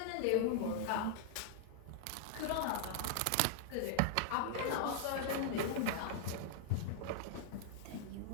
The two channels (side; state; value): both; different; correlation -0.01